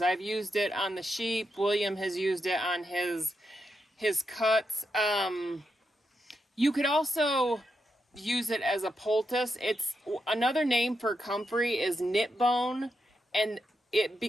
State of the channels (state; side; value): normal; both; correlation 0.84